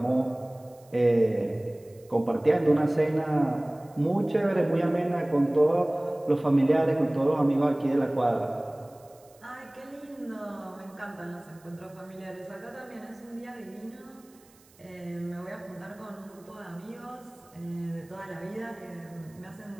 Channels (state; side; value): noise; right; hiss, 29 dB below the sound